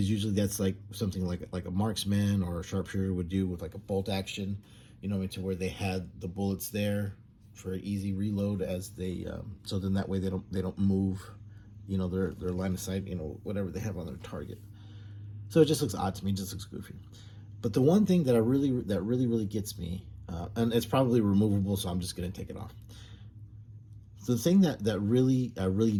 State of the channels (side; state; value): both; identical; correlation 1.00